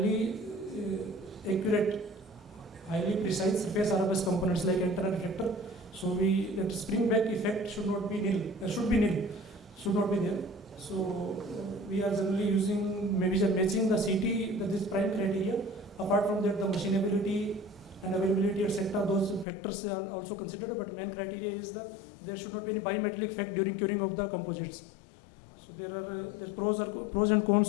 accurate, highly precise surface RFS components like antenna reflector. So that spring back effect should not be nil. Should not be there. So we are generally using maybe matching the CT, that is prime criteria. Apart from that, the machinability and availability, etc., those factors are also considered. But main criteria is that there should not be a bimetallic effect during curing of the composites. So there are pros and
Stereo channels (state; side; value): drops out; right; at 19.5 s